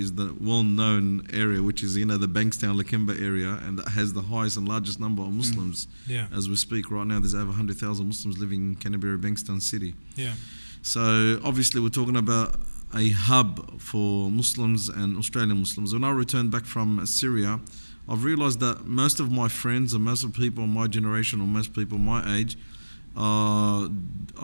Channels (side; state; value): both; inverted; correlation -1.00